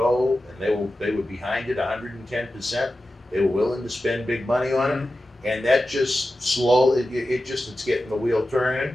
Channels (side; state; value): both; normal; correlation 0.93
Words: and they were behind it 110%. They were willing to spend big money on it, and that just slowly, it's getting the wheel turning